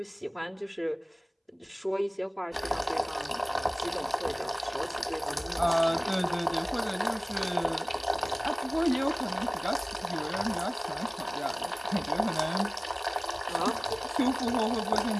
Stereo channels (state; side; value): identical; both; correlation 1.00